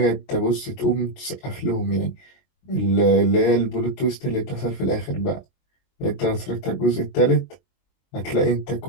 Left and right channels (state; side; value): late; right; 22 ms